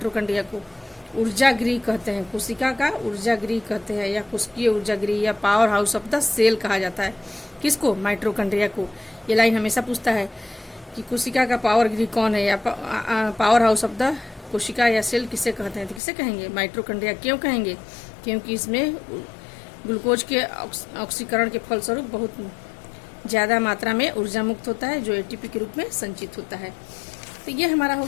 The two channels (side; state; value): right; drops out; at 16.0 s